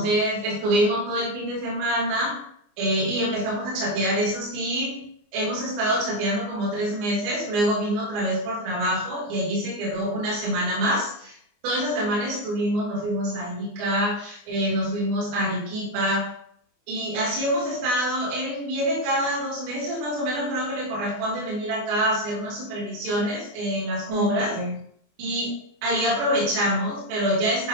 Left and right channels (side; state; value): left; late; 24 ms